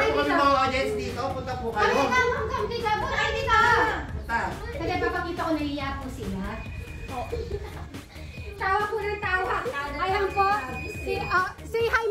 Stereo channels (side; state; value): both; identical; correlation 1.00